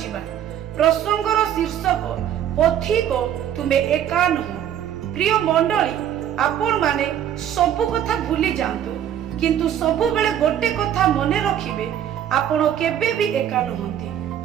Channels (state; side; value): quieter; left; 10.2 dB